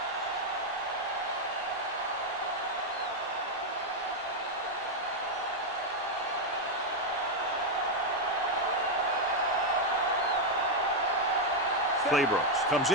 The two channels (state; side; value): normal; both; correlation 0.01